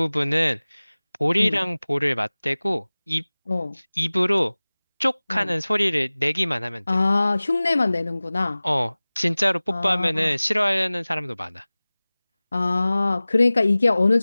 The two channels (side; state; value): both; inverted; correlation -0.99